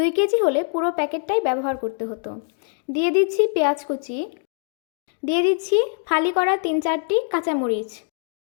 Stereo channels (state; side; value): silent; right; digital silence